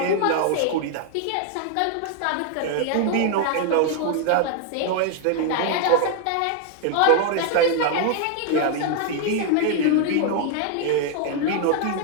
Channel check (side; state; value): both; different; correlation 0.00